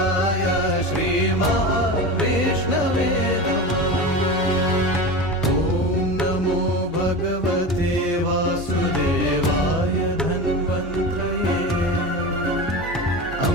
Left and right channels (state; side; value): normal; both; correlation 0.26